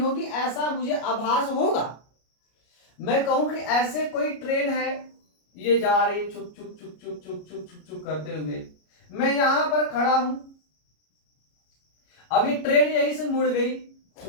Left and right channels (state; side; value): late; right; 33 ms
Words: ऐसा मुझे आभास होगा। मैं कहूं कि ऐसे कोई ट्रेन है, ये जा रही छुक छुक छुक छुक छुक छुक छुक छुक करते हुए, मैं यहां पर खड़ा हूं, अभी ट्रेन यहीं से मुड़ गई